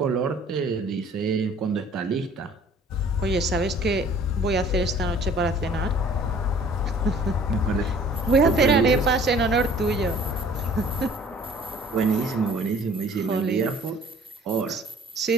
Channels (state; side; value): normal; both; correlation 0.52